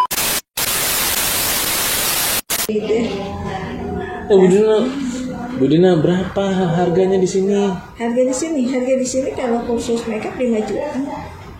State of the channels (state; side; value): identical; both; correlation 1.00